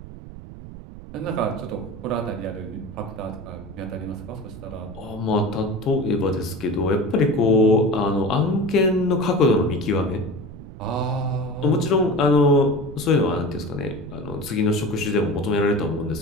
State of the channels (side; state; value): right; noise; rumble, 15 dB below the sound